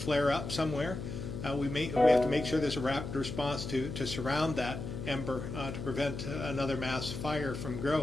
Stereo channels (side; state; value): left; noise; hum, 6 dB below the sound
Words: up somewhere, we have to make sure there's a rapid response to surround that ember to prevent another mass fire from